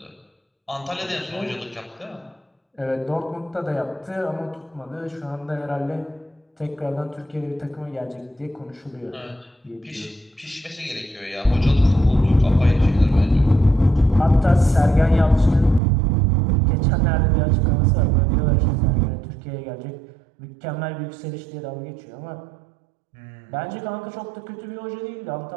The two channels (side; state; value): left; drops out; at 15.8 s